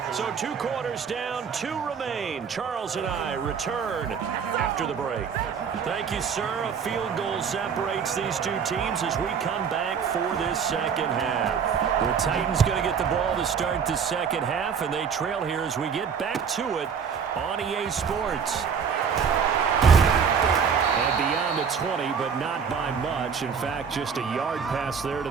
So 2 quarters down, 2 remain. Charles and I return after the break. Thank you, sir. A field goal separates these 2 teams as we come back for this 2nd half. The Titans going to get the ball to start the 2nd half, and they trail here as we get back to it on EA Sports. And beyond the 20, but not by much. In fact, just a yard pass there to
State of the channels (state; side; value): quieter; left; 6.7 dB